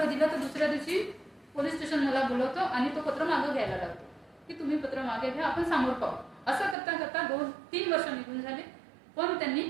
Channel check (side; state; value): left; drops out; at 6.8 s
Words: दिलं तर दुसऱ्या दिवशी पोलीस स्टेशन मला बोलवतो आणि तो पत्र मागं घ्यायला लागतो की तुम्ही पत्र मागे घ्या, आपण समोर पाहू. असं करता करता 2-3 वर्ष निघून झाले, पण त्यांनी